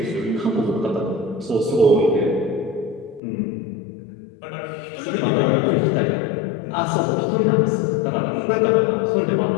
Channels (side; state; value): right; drops out; at 3.2 s